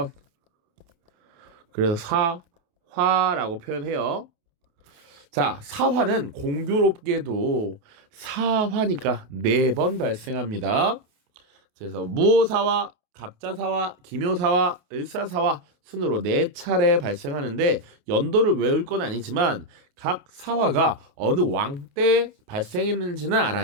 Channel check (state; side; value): late; left; 28 ms